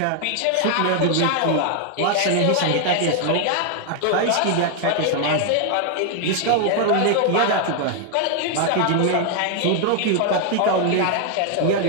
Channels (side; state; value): both; different; correlation 0.00